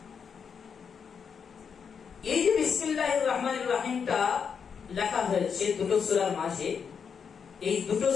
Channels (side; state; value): right; quieter; 6.6 dB